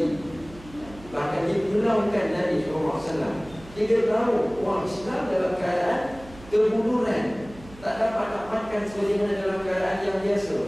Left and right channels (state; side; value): noise; right; hum, 20 dB below the sound